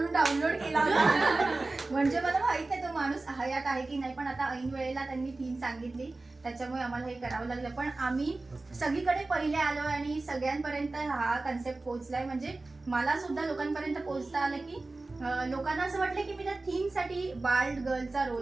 डाउनलोड केला होता. म्हणजे मला माहित नाही तो माणूस हयात आहे की नाही, पण आता ऐन वेळेला त्यांनी थीम सांगितली त्याच्यामुळे आम्हाला हे करावं लागलं. पण आम्ही सगळीकडे पहिले आलो आणि सगळ्यांपर्यंत हा कन्सेप्ट पोहोचलाय. म्हणजे मला सुद्धा लोकांपर्यंत पोहोचता आलं की लोकांना असं वाटलं की मी त्या थीमसाठी बाल्ड गर्लचा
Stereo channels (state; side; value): quieter; left; 3.3 dB